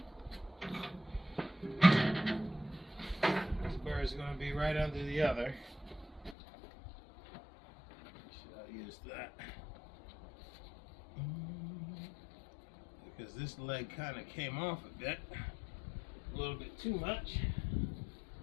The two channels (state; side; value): drops out; right; at 6.4 s